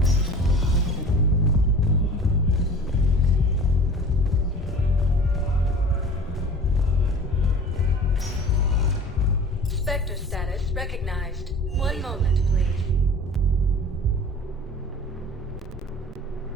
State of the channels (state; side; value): normal; both; correlation 0.42